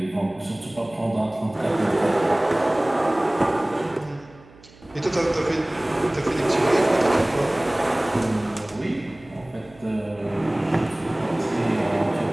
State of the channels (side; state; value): right; noise; hum, 25 dB below the sound